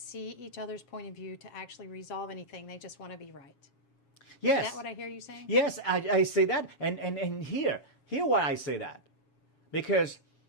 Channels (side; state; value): right; late; 7.3 ms